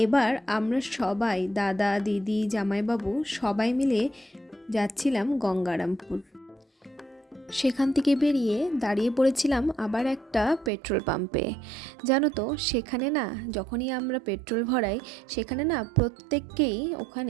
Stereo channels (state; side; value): drops out; left; at 10.7 s